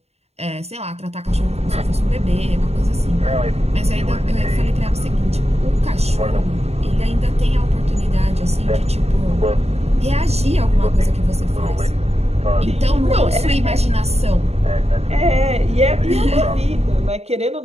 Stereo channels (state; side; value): late; left; 0.30 ms